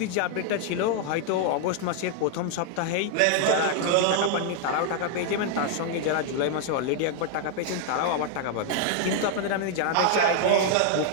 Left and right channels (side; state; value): both; different; correlation 0.00